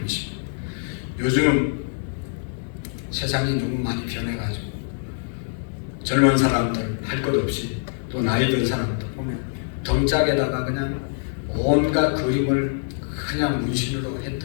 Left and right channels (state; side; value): silent; right; digital silence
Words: 요즘 세상이 너무 많이 변해가지고 젊은 사람들 할 것 없이, 또 나이 든 사람들 보면 덩짝에다가 그냥 온갖 그림을 그냥 문신으로